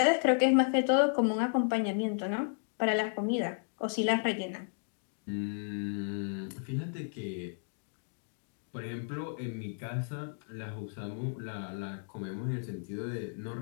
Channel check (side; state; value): right; silent; digital silence